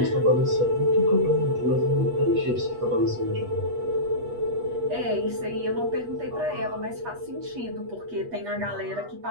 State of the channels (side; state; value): left; late; 8.3 ms